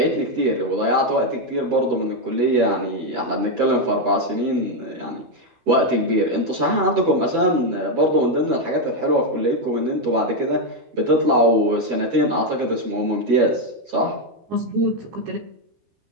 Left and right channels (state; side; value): late; left; 12 ms